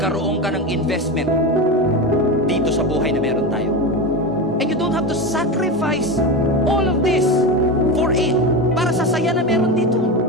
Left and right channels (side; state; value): both; normal; correlation 0.20